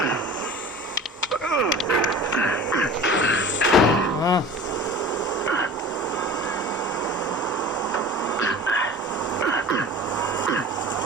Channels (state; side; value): normal; both; correlation 0.39